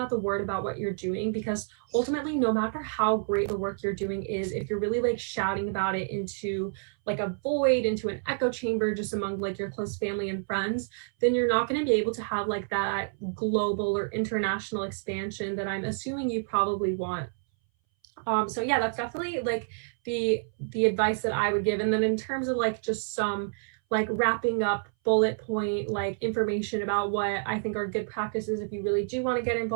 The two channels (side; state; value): left; silent; 59 dB below the other